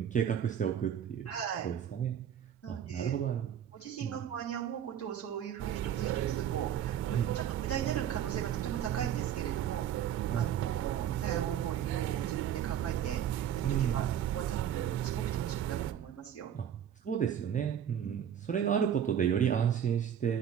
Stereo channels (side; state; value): left; quieter; 9.6 dB